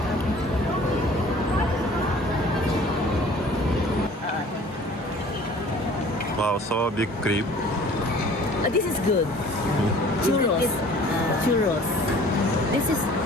Wow, so big creep. This is good. Churros. Churros. This is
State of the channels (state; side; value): normal; both; correlation 0.49